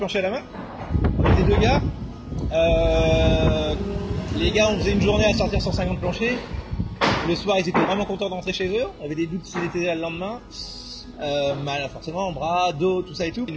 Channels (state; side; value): identical; both; correlation 1.00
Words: à la main. On était deux gars. Les gars, on faisait une journée à sortir 150 planchers. Le soir, ils étaient vraiment contents de rentrer chez eux. On avait des doutes s'ils étaient là le lendemain. Mal, forcément, bras, dos, tout ça et tout.